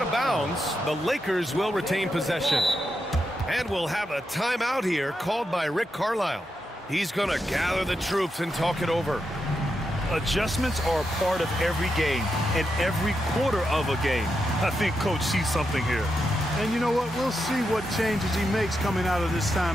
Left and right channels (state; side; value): normal; both; correlation 0.85